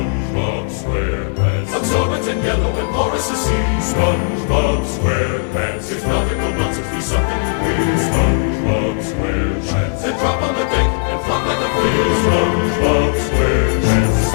SquarePants. Absorbent and yellow and porous as sea. SpongeBob SquarePants. If nautical nonsense be something you wish, SpongeBob SquarePants. then drop on the deck and flop on the field. SpongeBob SquarePants.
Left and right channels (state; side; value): silent; right; digital silence